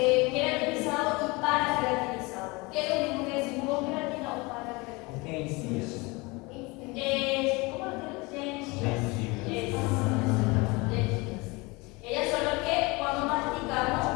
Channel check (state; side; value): quieter; right; 25.3 dB